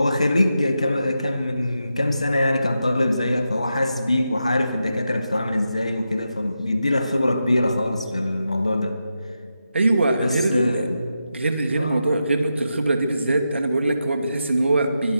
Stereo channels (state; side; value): inverted; both; correlation -0.87